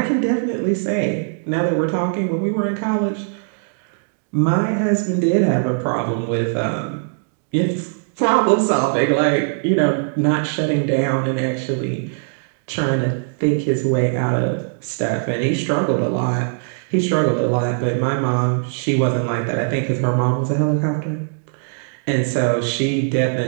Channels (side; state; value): left; silent; digital silence